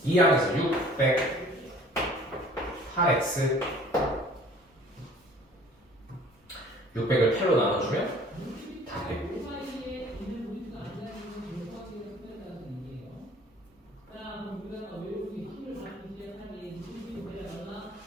이 항에서 608x. 600을 8로 나눠주면 다 돼.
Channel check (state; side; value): normal; both; correlation 0.52